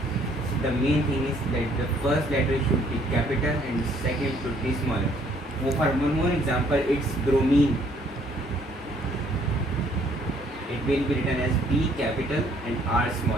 The main thing is that the first letter should be capital and second should be smaller. For one more example, it's bromine. It will be written as B capital and R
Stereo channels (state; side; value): normal; both; correlation 0.63